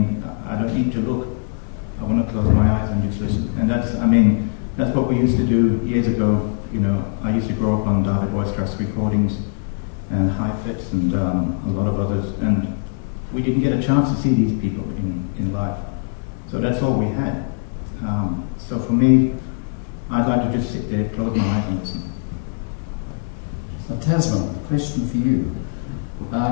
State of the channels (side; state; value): right; silent; 65 dB below the other